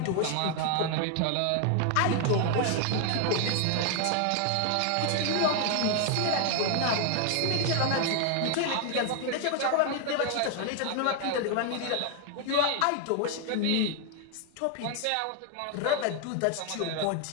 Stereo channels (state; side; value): different; both; correlation 0.00